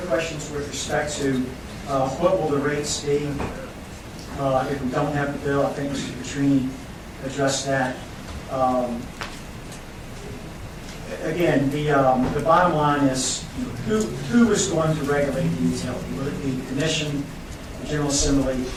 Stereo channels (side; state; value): both; identical; correlation 1.00